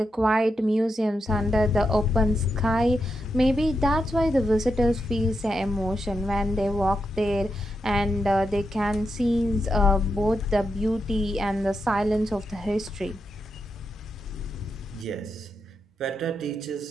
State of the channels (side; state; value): both; normal; correlation 0.85